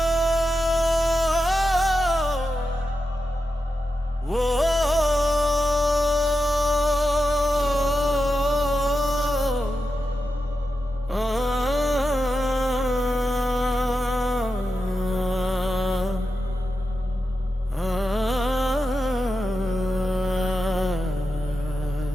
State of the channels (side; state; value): both; normal; correlation 0.89